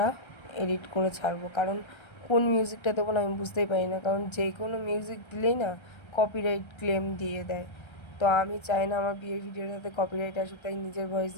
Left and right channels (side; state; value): right; late; 1.3 ms